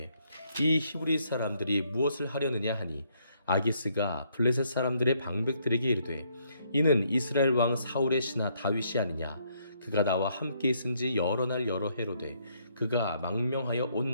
이 히브리 사람들이 무엇을 하려느냐 하니 아기스가 블레셋 사람들의 방백들에게 이르되 이는 이스라엘 왕 사울의 신하 다윗이 아니냐. 그가 나와 함께 있은지 여러 날 여러 해로되 그가 망명하여 온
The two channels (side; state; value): both; inverted; correlation -0.71